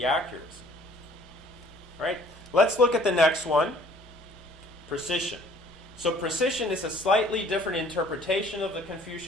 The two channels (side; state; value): both; normal; correlation 0.55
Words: accuracy. All right? Let's look at the next one, precision. So precision is a slightly different interpretation of the